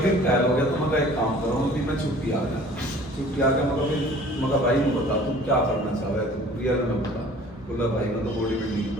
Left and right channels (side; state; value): both; normal; correlation 0.49